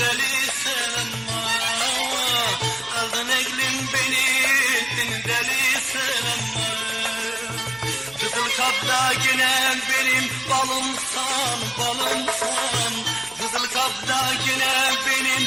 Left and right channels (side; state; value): right; noise; hum, 25 dB below the sound